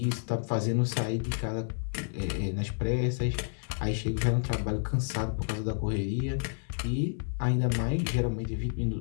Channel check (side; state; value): right; silent; digital silence